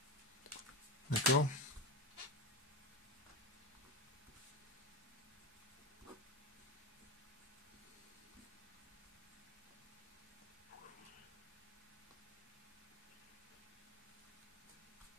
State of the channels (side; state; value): both; normal; correlation 0.19